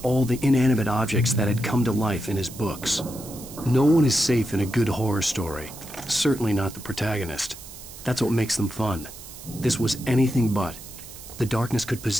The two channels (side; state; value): right; noise; hiss, 15 dB below the sound